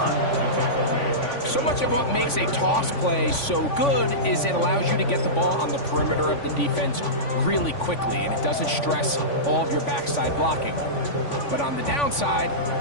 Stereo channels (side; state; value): right; late; 3.5 ms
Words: So much of what makes a toss play so good is it allows you to get the ball on the perimeter of the defense really quickly, and it doesn't stress all of your backside blocking. But on the downside,